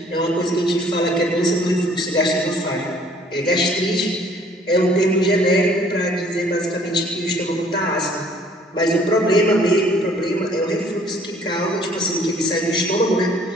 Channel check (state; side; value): normal; both; correlation 0.58